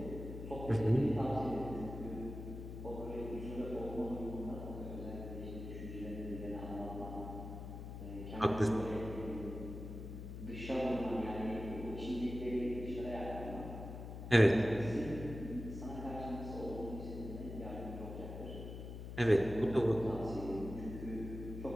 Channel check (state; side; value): noise; left; hum, 8 dB below the sound